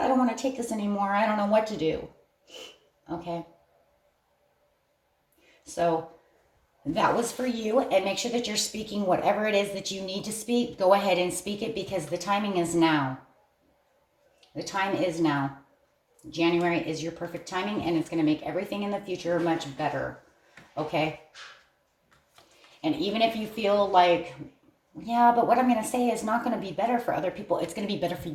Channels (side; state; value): both; identical; correlation 1.00